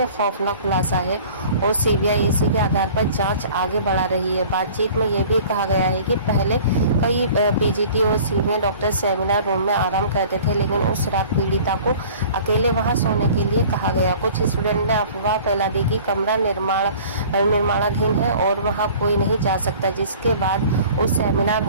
खौफनाक खुलासा है और सीबीआई इसी के आधार पर जांच आगे बढ़ा रही है। बातचीत में ये भी कहा गया है कि पहले कई पीजीटी और सीनियर डॉक्टर सेमिनार रूम में आराम करते थे, लेकिन उस रात पीड़िता को अकेले वहां सोने के लिए कहा गया। कुछ स्टूडेंट ने अफवाह फैला दी कि कमरा निर्माणाधीन है और वहां कोई नहीं जा सकता, जिसके बाद उस सेमिनार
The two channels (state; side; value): inverted; both; correlation -0.46